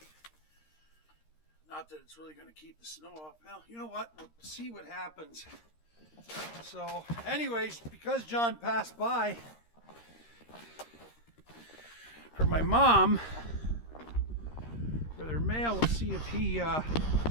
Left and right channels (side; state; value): right; late; 13 ms